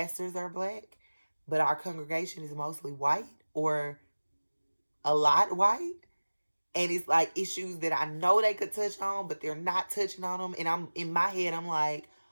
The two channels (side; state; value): both; inverted; correlation -1.00